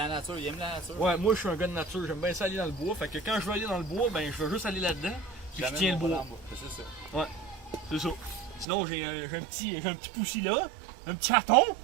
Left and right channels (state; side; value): drops out; left; at 8.7 s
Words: nature, il aime la nature. Ouais, moi je suis un gars de nature, j'aime bien ça aller dans le bois, fait que quand je veux aller dans le bois, ben je veux juste aller là-dedans, puis je tiens le bois. C'est ça. C'est ça. Sinon, j'ai un petit poussi là, un petit raton,